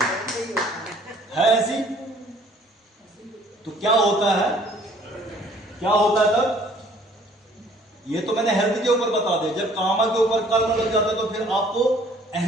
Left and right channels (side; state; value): both; normal; correlation 0.57